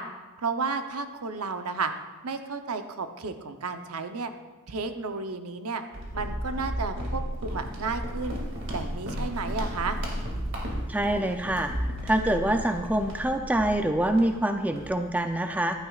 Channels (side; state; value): both; normal; correlation 0.64